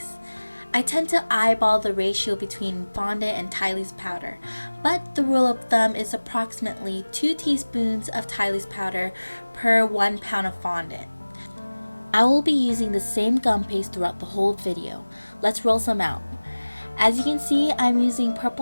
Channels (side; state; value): both; inverted; correlation -1.00